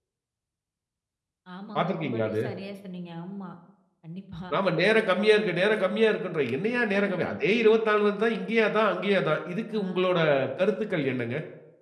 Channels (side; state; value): both; identical; correlation 1.00